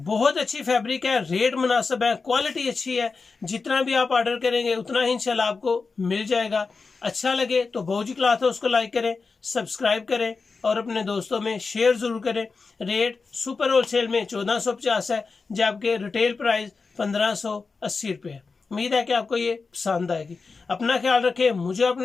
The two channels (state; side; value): quieter; right; 4.5 dB